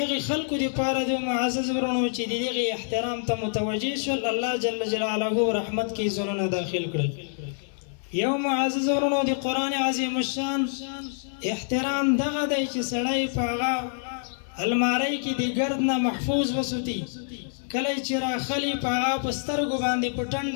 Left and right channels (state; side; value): silent; right; 61 dB below the other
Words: هغې خلکو دپاره د معزز ورونو چې د دغې احترام ته متوجه شول، الله جل جلاله رحمت کې زړونه داخل کړل. یو معزز ورونو د قرآن عظیم الشان احترام دغه دی چې سړی په هغه الماری کې د ګرد نه محفوظ وساتي، کله چې راخلي په هغه په سترګو باندې په